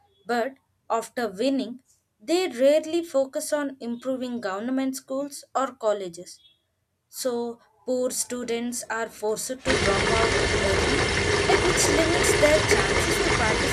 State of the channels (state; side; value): identical; both; correlation 1.00